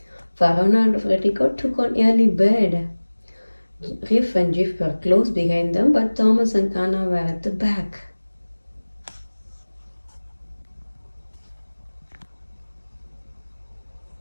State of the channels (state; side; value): inverted; both; correlation -1.00